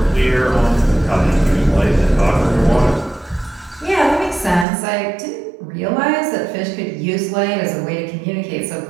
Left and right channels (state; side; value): drops out; left; at 4.7 s